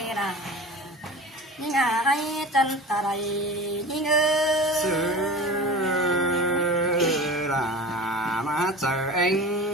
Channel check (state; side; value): normal; both; correlation 0.35